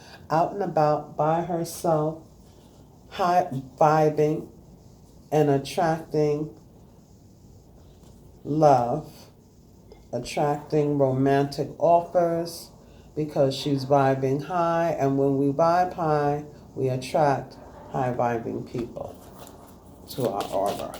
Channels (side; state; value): both; identical; correlation 1.00